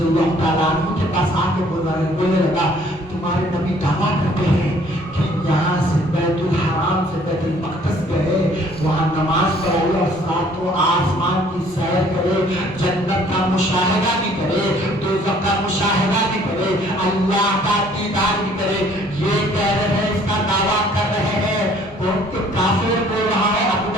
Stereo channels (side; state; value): both; normal; correlation 0.58